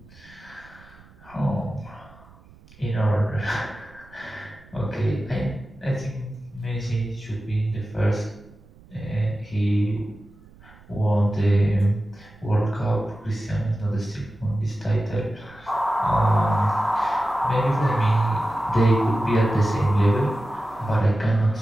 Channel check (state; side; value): noise; right; rumble, 25 dB below the sound